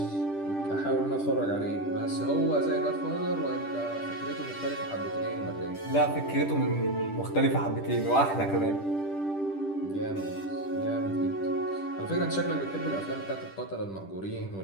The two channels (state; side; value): late; right; 10 ms